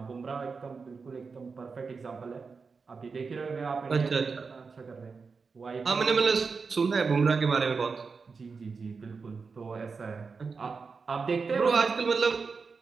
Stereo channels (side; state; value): left; quieter; 4.9 dB